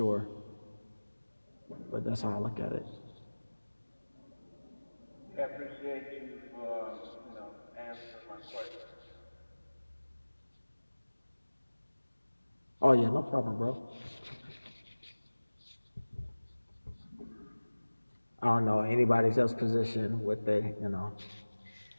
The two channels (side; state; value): both; inverted; correlation -1.00